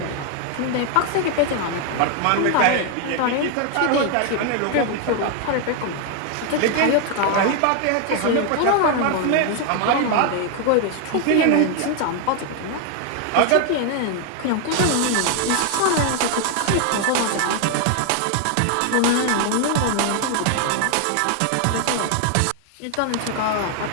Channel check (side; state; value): both; different; correlation 0.00